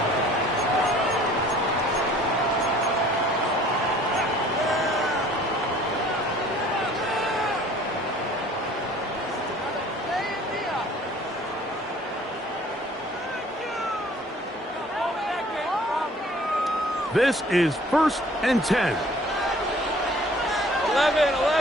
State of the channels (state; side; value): normal; both; correlation 0.53